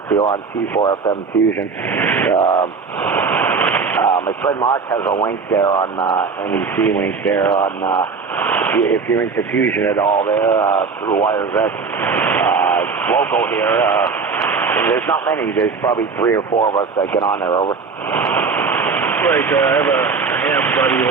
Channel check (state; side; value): quieter; left; 5.0 dB